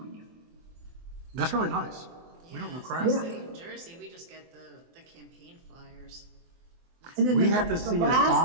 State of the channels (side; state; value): left; late; 24 ms